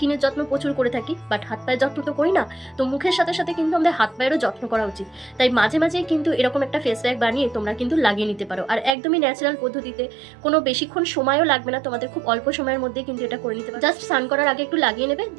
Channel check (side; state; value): left; drops out; at 9.0 s